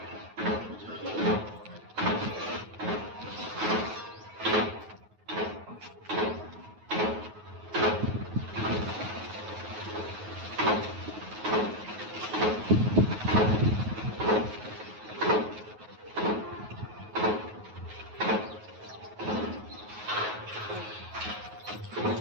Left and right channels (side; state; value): left; late; 9.3 ms